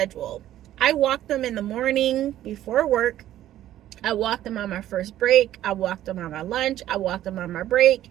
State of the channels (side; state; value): left; quieter; 12.9 dB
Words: I walk them in the morning before work. I walk them on my first break. I walk them on my lunch. I walk them on my break.